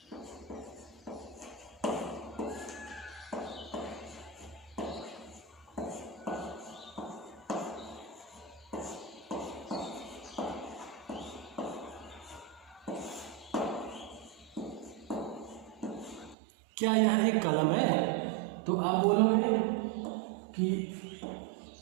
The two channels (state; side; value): drops out; left; at 16.4 s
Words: क्या यह एक कलम है, तो आप बोलोगे कि